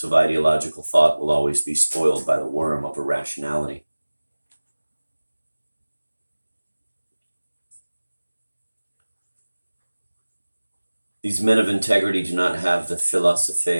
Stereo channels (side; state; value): both; inverted; correlation -1.00